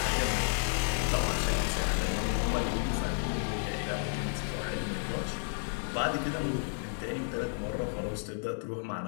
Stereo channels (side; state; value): right; silent; digital silence